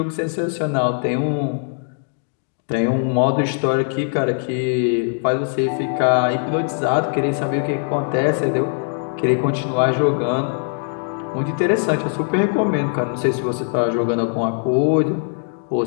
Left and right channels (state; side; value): silent; right; 65 dB below the other